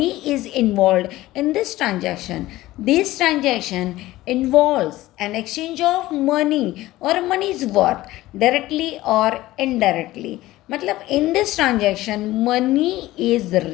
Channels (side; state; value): right; quieter; 16.9 dB